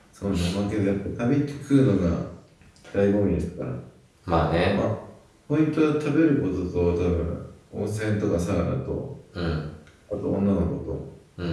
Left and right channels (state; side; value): identical; both; correlation 1.00